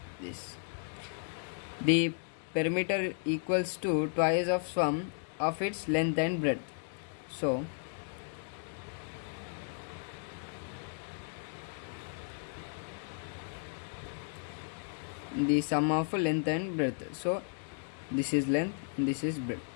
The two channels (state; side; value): silent; right; 55 dB below the other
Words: This, the perimeter equals to twice of sum of its length and breadth. So the sum of length and breadth. So this is length and this is breadth.